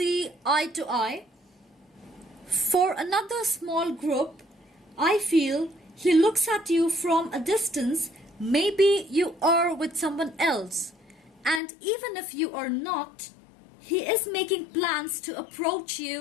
eye to eye. For another small group, I feel he looks at you from a distance. Maybe you are with someone else, and even if you are not, he is making plans to approach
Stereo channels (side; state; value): right; drops out; at 11.6 s